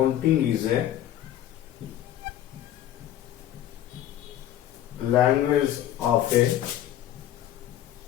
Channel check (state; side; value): quieter; right; 12.1 dB